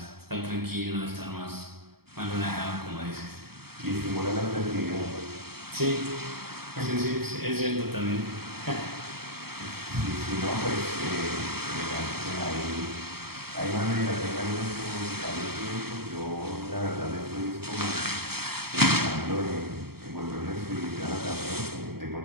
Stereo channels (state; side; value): late; left; 0.95 ms